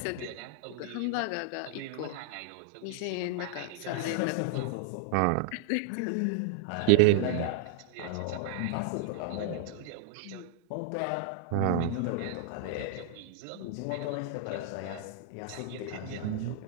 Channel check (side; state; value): both; different; correlation 0.00